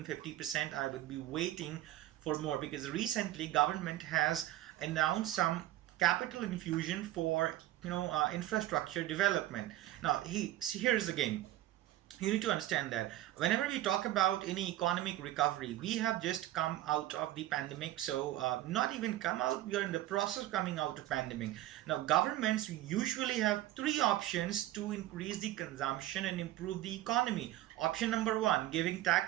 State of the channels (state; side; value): quieter; left; 14.8 dB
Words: 50%. I would be waiting for more, because recently government has announced some capital infusion for infrastructure development. Now here's the game. You need to understand that whenever we talk about any economic recovery, we have just come out of the pandemic. So not even come out, we are in the process of coming out of pandemic. Now governments usually have three options to increase the consumption and improve the economy. Option number one, giving